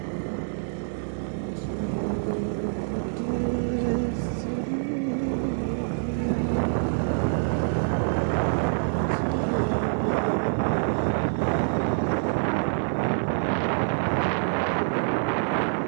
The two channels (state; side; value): silent; left; digital silence